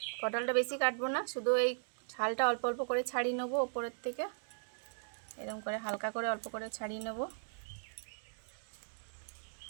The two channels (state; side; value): silent; left; digital silence